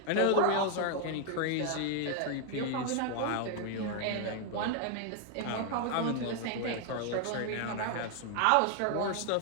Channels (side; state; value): both; different; correlation 0.00